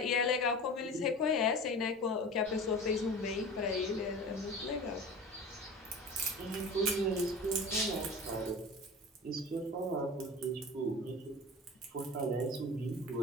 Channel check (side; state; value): both; normal; correlation 0.35